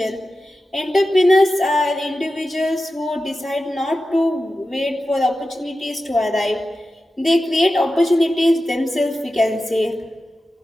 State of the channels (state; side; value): normal; both; correlation 0.93